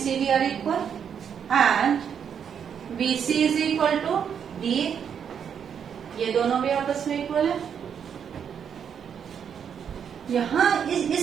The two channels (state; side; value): quieter; left; 7.8 dB